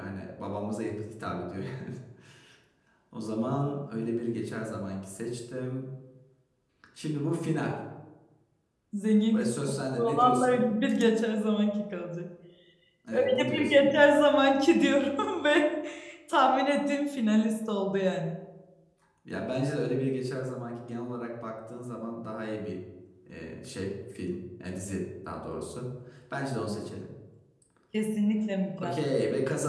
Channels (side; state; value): both; identical; correlation 1.00